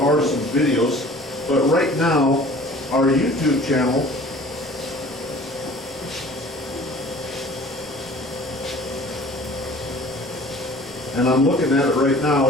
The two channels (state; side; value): normal; both; correlation 0.47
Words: some videos, but right now, our YouTube channel and I'm looking at it right now,